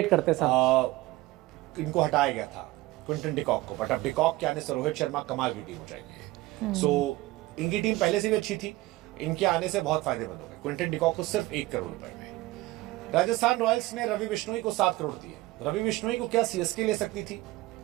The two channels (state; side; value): quieter; left; 18.9 dB